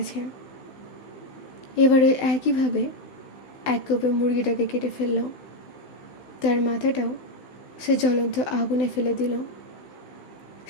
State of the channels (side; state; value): right; late; 16 ms